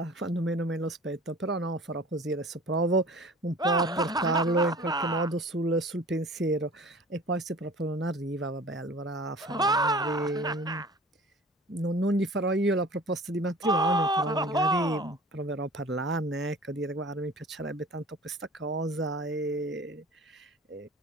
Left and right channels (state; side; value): normal; both; correlation 0.43